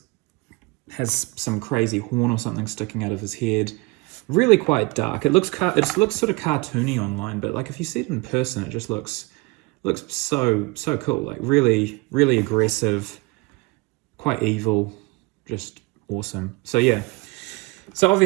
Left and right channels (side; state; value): left; quieter; 25.5 dB